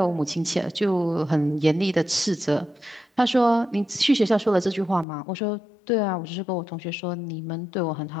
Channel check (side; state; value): right; drops out; at 5.1 s